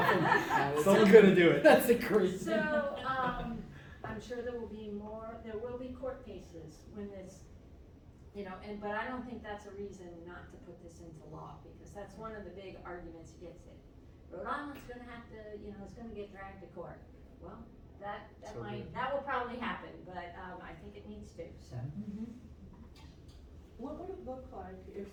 Someone's gonna do it. That's a crazy. So, I'm sure there will be court cases when this, but I don't think that's a reason not to put this into law, because that's one of the big arguments against it. Rhode Island's gonna have to, it's gonna get dragged to court. Well, that will probably happen, but, I think it needs to, so. What would it look like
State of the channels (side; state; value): both; identical; correlation 1.00